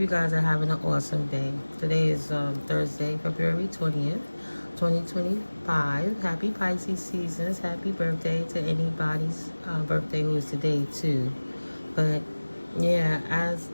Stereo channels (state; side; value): inverted; both; correlation -1.00